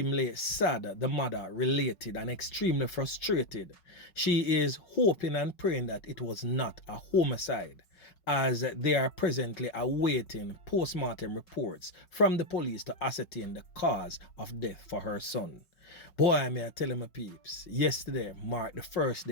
sad, the mother related, and extremely frustrated. She is hoping and praying that it was not a homicide. as they are presently awaiting post-mortem reports from the police to ascertain the cause of death for her son. Boy, may I tell you, my peeps, yesterday marked the first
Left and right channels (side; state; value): right; late; 5.4 ms